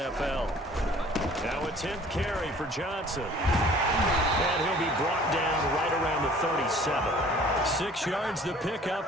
Now a 10th carry for Johnson. And he'll be brought down right around the 37. 6 yards the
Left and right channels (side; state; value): both; normal; correlation 0.51